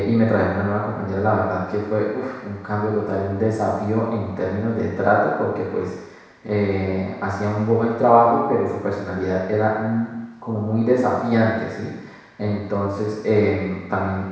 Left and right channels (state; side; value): identical; both; correlation 1.00